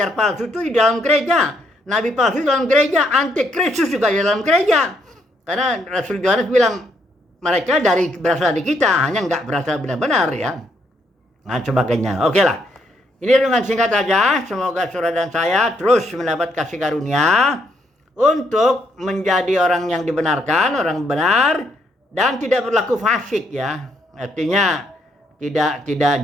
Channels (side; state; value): both; normal; correlation 0.73